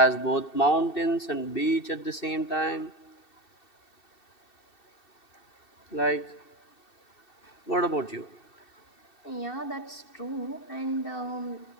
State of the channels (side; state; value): right; late; 2.7 ms